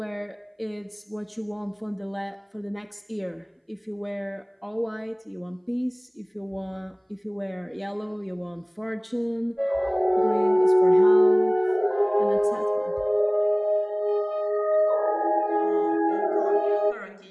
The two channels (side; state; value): both; identical; correlation 1.00